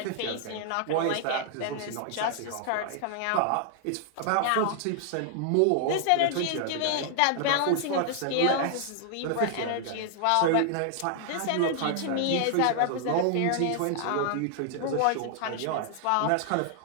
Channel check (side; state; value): both; different; correlation 0.00